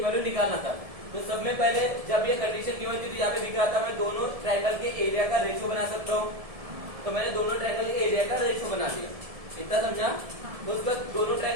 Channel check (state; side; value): late; left; 1.7 ms